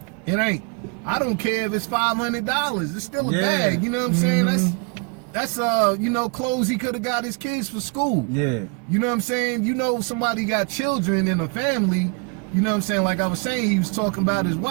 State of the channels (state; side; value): quieter; left; 34.2 dB